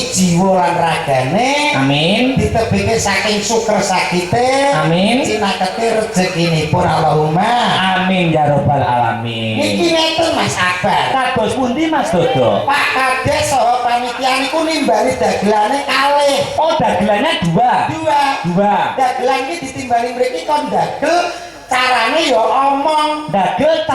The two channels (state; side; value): identical; both; correlation 1.00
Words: jiwa lan ragane. Amin. Ditebeke saking syukur sakite. Amin. Cinakete rezekinipun Allahumma. Amin ya robbal alamin. Niki ngeten Mas Akbar. Kados pundi Mas Dodo? Pak Kades saha panitia niku nimbali dagelane kalih. Oh, dagelannya dua. Dagelan iki ditimbali mriki kon dagel carane ya omong. Dagel